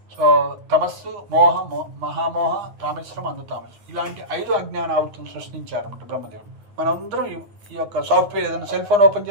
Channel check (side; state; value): left; late; 9.8 ms